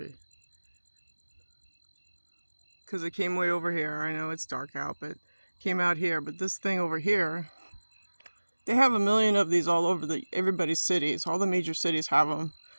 Because it came way over here. I know it's dark out, but it came out here. But this thing over here, they have a million of these all over everybody's cities. All the major cities have them.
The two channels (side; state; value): both; inverted; correlation -1.00